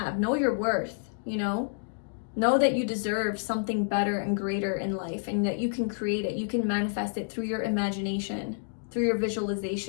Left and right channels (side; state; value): right; silent; digital silence